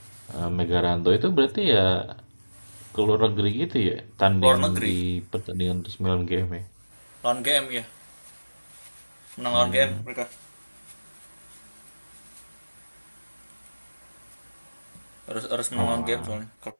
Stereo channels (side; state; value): both; inverted; correlation -1.00